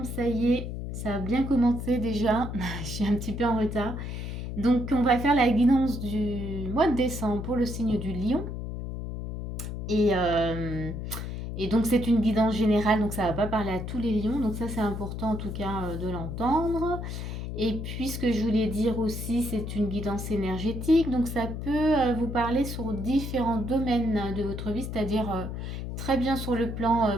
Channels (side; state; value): left; noise; hum, 6 dB below the sound